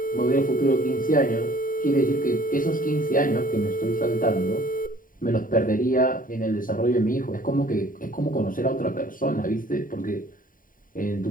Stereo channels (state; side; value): late; right; 0.40 ms